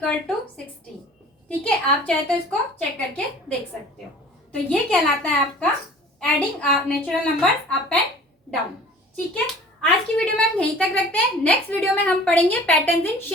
टू 16। ठीक है, आप चाहे तो इसको चेक करके देख सकते हो। तो ये कहलाता है आपका adding natural numbers up and down. ठीक है, आज की वीडियो में हम यहीं तक रखते हैं। नेक्स्ट वीडियो में हम पढ़ेंगे पैटर्न्स इन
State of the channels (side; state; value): both; normal; correlation 0.46